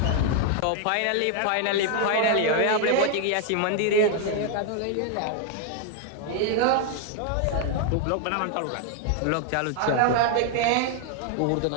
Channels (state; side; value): different; both; correlation 0.00